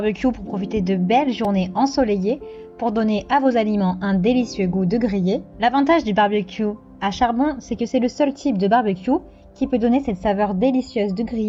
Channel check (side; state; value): both; identical; correlation 1.00